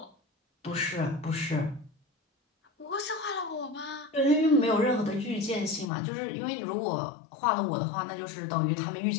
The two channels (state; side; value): drops out; right; at 5.9 s